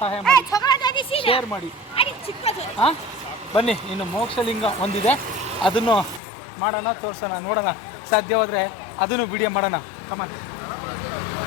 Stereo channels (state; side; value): drops out; right; at 6.2 s